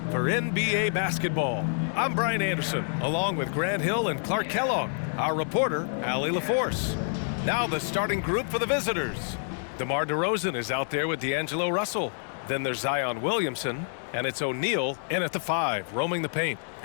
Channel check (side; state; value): right; silent; digital silence